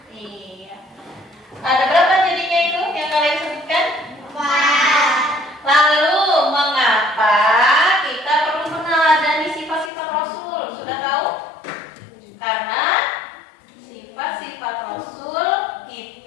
iya. Ada berapa jadinya itu yang kalian sebutkan? Lalu mengapa kita perlu meneladani sifat-sifat Rasul? Sudah tahu? Karena sifat-sifat Rasul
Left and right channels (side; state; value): right; drops out; at 9.9 s